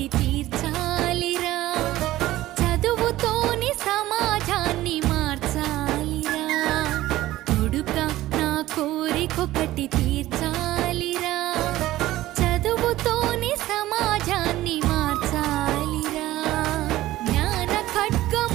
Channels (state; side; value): quieter; left; 15.8 dB